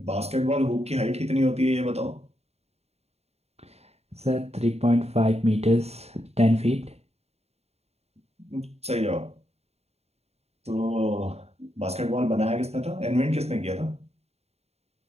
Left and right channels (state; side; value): late; left; 0.30 ms